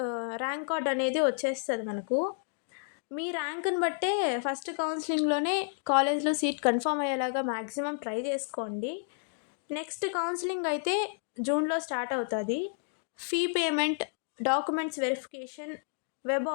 ర్యాంక్ కార్డ్ అనేది వచ్చేస్తుంది మనకు. మీ ర్యాంక్ని బట్టే ఫస్ట్ కౌన్సిలింగ్లోనే కాలేజ్లో సీట్ కన్ఫర్మ్ అయ్యేలాగా మ్యాక్సిమం ట్రై చేసుకోండి. నెక్స్ట్ కౌన్సిలింగ్ అయితే జూన్లో స్టార్ట్ అవుతుంది. Fee payment, documents verification, web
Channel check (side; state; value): right; silent; digital silence